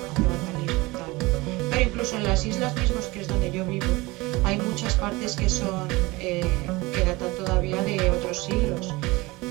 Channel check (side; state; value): left; quieter; 22.2 dB